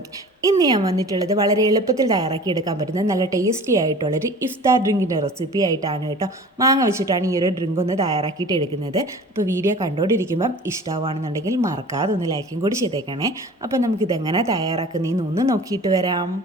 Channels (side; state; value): both; normal; correlation 0.42